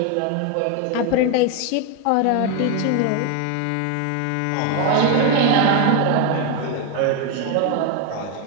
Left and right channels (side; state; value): both; different; correlation 0.01